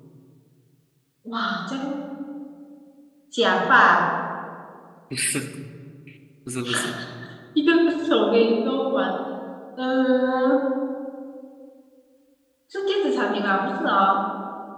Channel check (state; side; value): identical; both; correlation 1.00